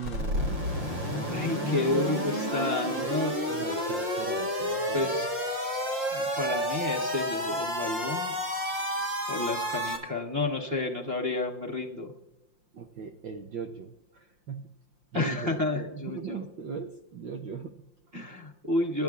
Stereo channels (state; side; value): late; left; 5.7 ms